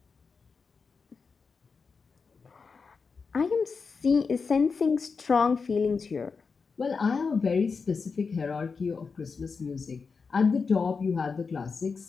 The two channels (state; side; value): quieter; right; 5.0 dB